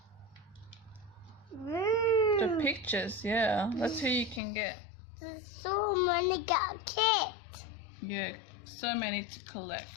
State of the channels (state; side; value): drops out; right; at 4.4 s